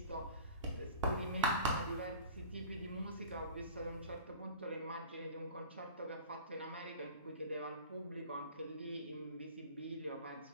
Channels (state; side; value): inverted; both; correlation -0.42